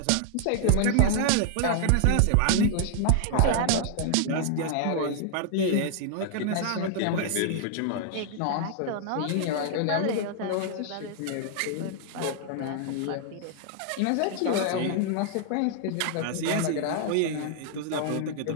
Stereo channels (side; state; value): both; different; correlation 0.00